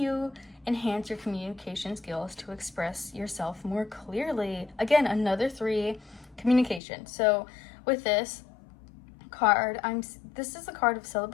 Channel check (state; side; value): drops out; right; at 6.8 s